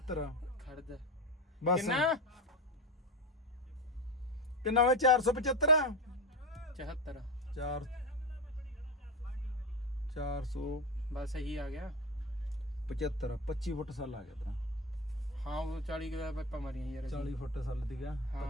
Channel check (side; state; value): both; normal; correlation 0.20